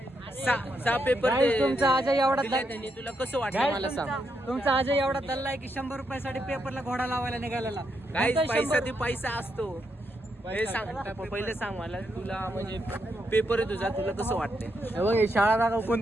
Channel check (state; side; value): normal; both; correlation 0.81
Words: पेपर तुमचा अजय एवढा त्यांनी तुला कसं वाटलं मला सांग. तुमचा अजय एवढा दल्ला की 100 रुपयासाठी पेपरला घोडा लावायला निघालेला. गाईस पैसा ती पैसा असतो. हे सांग पहिले सांग मला तुला म्हणजे पेपर आहे तुझा तुला कसं वाटतंय? बघ शाळा दाखव